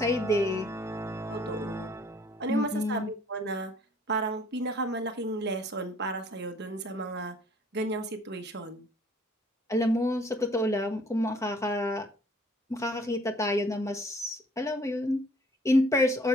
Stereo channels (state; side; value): normal; both; correlation 0.57